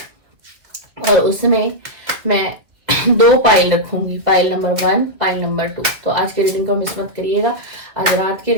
और उसमें मैं 2 पाइल रखूंगी, पाइल नंबर 1, पाइल नंबर 2। तो आज की रीडिंग को मिस मत करिएगा, आज रात की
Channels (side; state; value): left; late; 2.1 ms